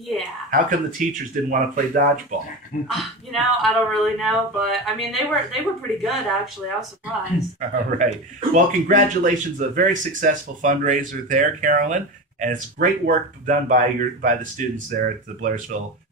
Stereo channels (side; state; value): both; normal; correlation 0.24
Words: How come the teachers didn't want to play dodgeball? I don't really know, but they were pretty good, actually. I was surprised. All right. Well, congratulations! A very successful fundraiser there, Karolyn, and it's great work done by the students there at the Blairsville